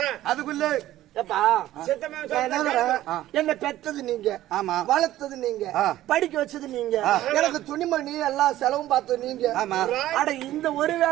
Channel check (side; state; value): left; quieter; 14.3 dB